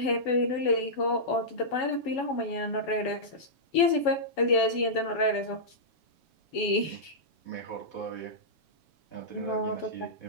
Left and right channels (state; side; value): late; right; 7.1 ms